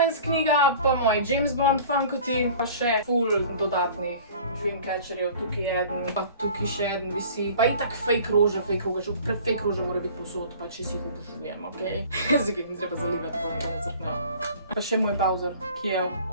knjiga, pa moji James Bond Funkoti, pa še full dodatnih Dreamcatcherjev, tukaj je eden, pa tukaj še eden visi, pa itak fake rože, fake rože mora biti posod, pa če si jih obožujem, okej? Zdaj, mi treba zalivati, pa nekaj ne crknejo. Pa še moj Bowser, ki je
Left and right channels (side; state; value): both; inverted; correlation -0.45